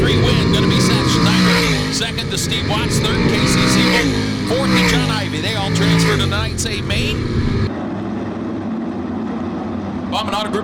Going to be Seth Schneider. Second to Steve Watts. Third, Casey Siebold. Fourth to John Ivey. They all transfer to tonight's A main. Bauman Auto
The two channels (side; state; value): both; identical; correlation 1.00